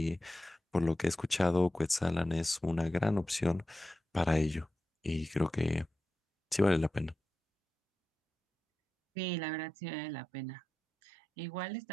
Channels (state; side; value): normal; both; correlation 0.92